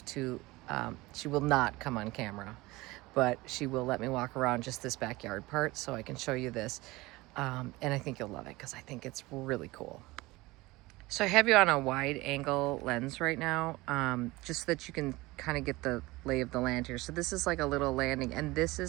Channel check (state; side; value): quieter; left; 20.8 dB